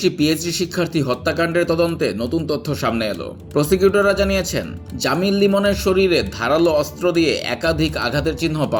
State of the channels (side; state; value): both; identical; correlation 1.00